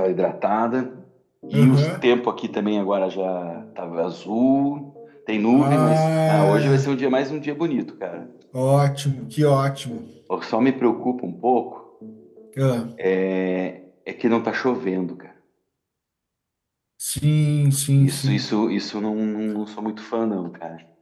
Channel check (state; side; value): identical; both; correlation 1.00